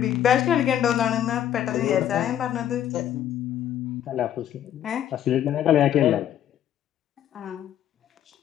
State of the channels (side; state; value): right; quieter; 10.8 dB